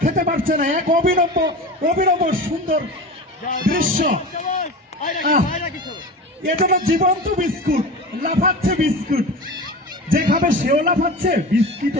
খেতে পারছে না, এক অভিনব সুন্দর দৃশ্য। এটা তো জীবন্ত বিস্কুট, লাফাচ্ছে বিস্কুট, যে খাবে সেও লাফাচ্ছে,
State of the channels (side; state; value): both; normal; correlation 0.30